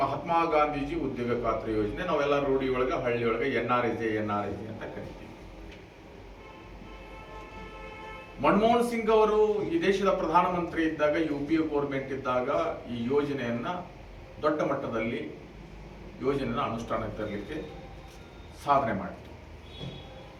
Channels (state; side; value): identical; both; correlation 1.00